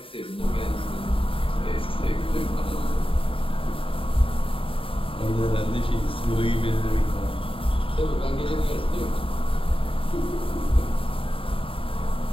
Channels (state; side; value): late; right; 0.26 ms